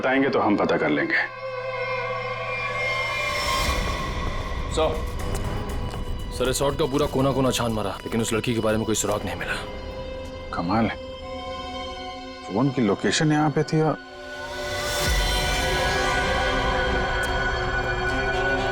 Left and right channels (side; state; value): both; identical; correlation 1.00